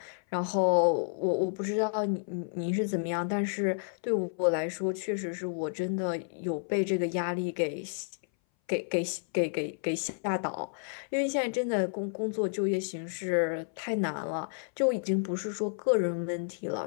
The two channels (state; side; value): silent; right; 57 dB below the other